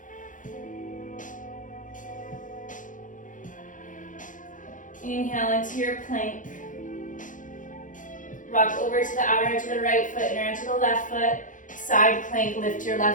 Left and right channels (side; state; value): right; late; 0.38 ms